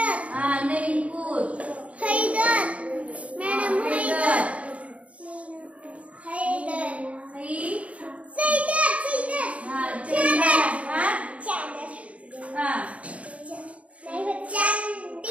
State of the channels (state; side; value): late; left; 0.064 ms